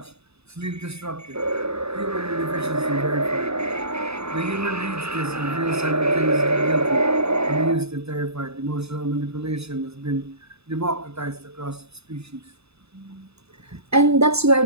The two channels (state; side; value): late; left; 0.79 ms